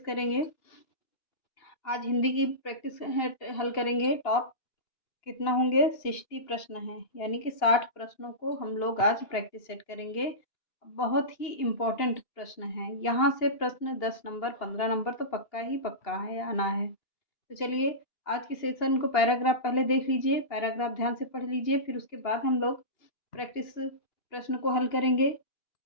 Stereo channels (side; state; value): right; late; 2.8 ms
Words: करेंगे? आज हिंदी की प्रैक्टिस हल करेंगे। टॉप कितना होंगे? 60 प्रश्न हैं, यानी कि 60 प्रश्नों को हम लोग आज प्रैक्टिस सेट करेंगे। बहुत ही इम्पोर्टेंट प्रश्न हैं। यहाँ से प्रश्न 10 नंबर 15 नंबर तो पक्का ही पक्का है, आना है। तो चलिए आज के सेशन को पैराग्राफ पहले देख लीजिए, पैराग्राफ ध्यान से पढ़ लीजिए, फिर उसके बाद हम लोग प्रैक्टिस प्रश्न को हल करेंगे।